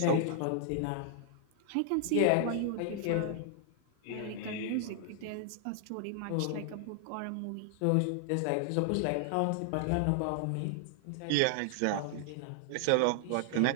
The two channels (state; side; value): different; both; correlation 0.00